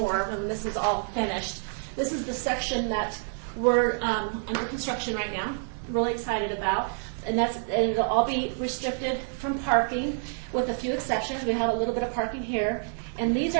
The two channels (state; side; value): silent; left; 59 dB below the other